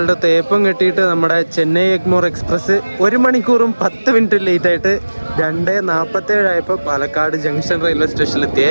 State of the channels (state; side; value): inverted; both; correlation -1.00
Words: തേപ്പം കെട്ടിയിട്ട് നമ്മുടെ ചെന്നൈ എഗ്മോർ എക്സ്പ്രസ് 1 മണിക്കൂറും 10 മിനിറ്റ് ലേറ്റ് ആയിട്ട് 2:47 ആയപ്പോൾ പാലക്കാട് ജംഗ്ഷൻ റെയിൽവേ സ്റ്റേഷനിലെത്തിയേ.